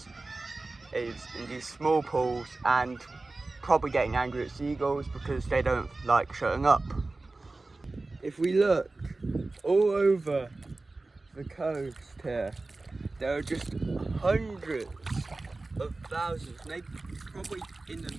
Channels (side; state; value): left; quieter; 3.3 dB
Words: in these small pools, and probably getting angry at seagulls because they don't like shutting up. If we look all over the coast here, there are just hundreds of thousands, maybe probably in